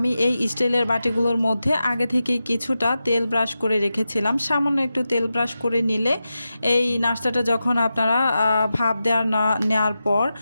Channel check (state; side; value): inverted; both; correlation -0.91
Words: এই স্টিলের বাটিগুলোর মধ্যে আগে থেকেই কিছুটা তেল ব্রাশ করে রেখেছিলাম। সামান্য একটু তেল ব্রাশ করে নিলে এই নাস্তাটা যখন আপনারা ভাপ নেওয়ার পর